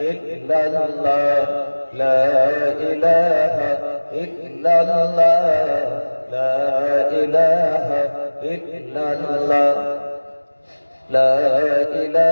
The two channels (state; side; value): inverted; both; correlation -1.00